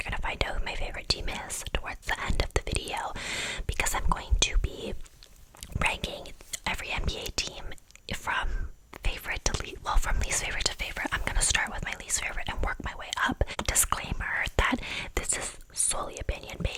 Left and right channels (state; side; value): identical; both; correlation 1.00